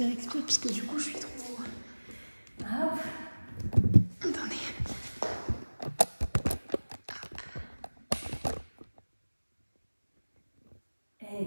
puisque du coup, je suis trop... Hop. Attendez.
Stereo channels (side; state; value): both; inverted; correlation -1.00